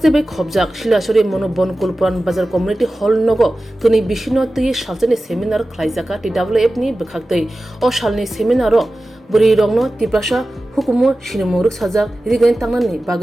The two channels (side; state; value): both; normal; correlation 0.95